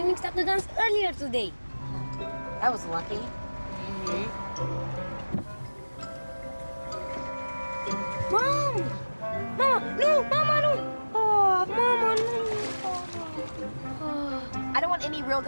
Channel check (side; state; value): both; inverted; correlation -1.00